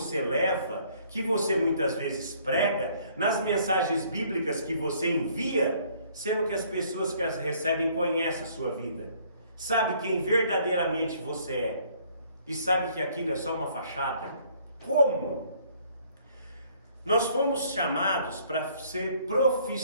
leva, que você muitas vezes prega, nas mensagens bíblicas que você envia, sendo que as pessoas que as recebem conhecem a sua vida, sabe quem verdadeiramente você é, e sabe que aquilo é só uma fachada? Como? Nós fomos chamados para ser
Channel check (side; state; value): both; inverted; correlation -0.61